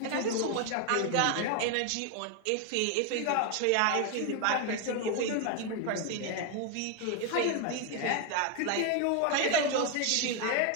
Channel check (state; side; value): different; both; correlation 0.01